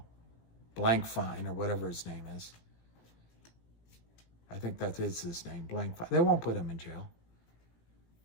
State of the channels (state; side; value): late; right; 17 ms